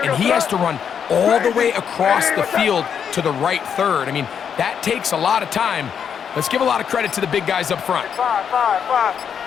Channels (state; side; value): quieter; right; 7.7 dB